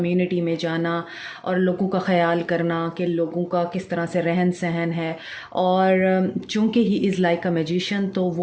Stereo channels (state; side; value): identical; both; correlation 1.00